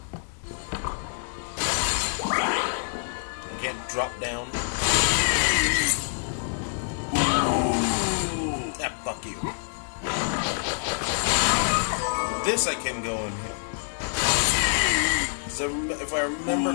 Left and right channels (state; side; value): silent; right; digital silence